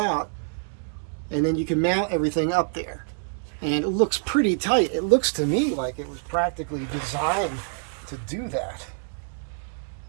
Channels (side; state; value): left; silent; 61 dB below the other